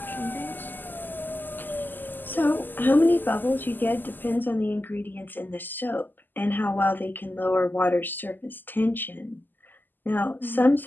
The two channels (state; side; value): late; right; 0.089 ms